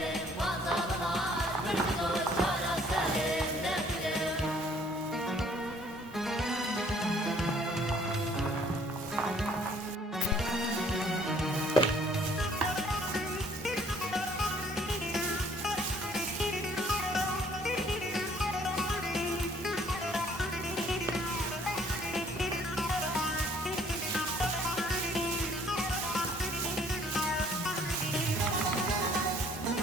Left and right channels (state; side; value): normal; both; correlation 0.59